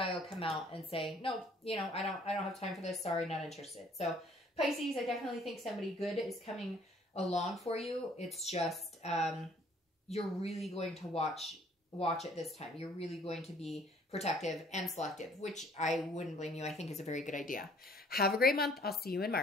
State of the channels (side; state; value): both; normal; correlation 0.59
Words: will come out and say, no, you know, I don't have time for this. Sorry, not interested. So Pisces, I definitely think somebody good is coming along for you. It's just, you're really going to watch it this time. You're really going to be protective and selective, which I wouldn't blame you. I think is a very good idea. Have a great month. I'll see you in